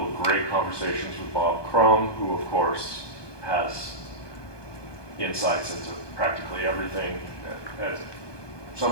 of great conversations with Bob Crum, who of course has insights into practically everything as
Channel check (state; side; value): late; right; 1.2 ms